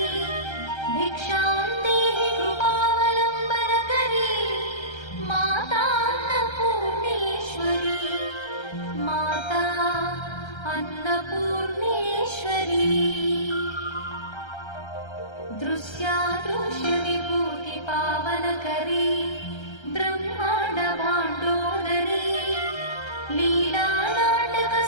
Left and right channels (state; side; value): late; right; 1.3 ms